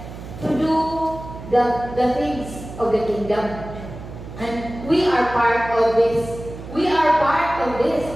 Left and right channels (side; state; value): right; noise; hum, 12 dB below the sound